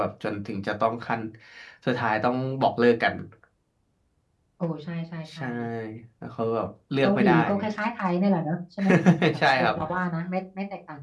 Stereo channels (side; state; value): both; identical; correlation 1.00